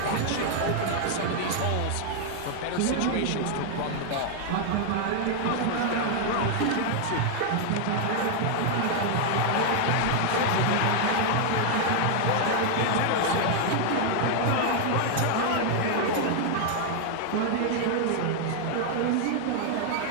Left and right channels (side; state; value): both; different; correlation 0.00